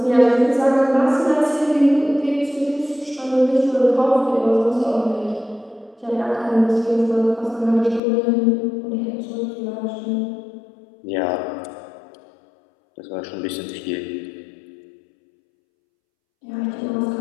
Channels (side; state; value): right; drops out; at 8.0 s